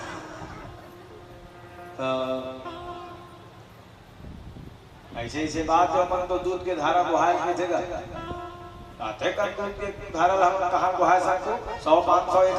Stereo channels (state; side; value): identical; both; correlation 1.00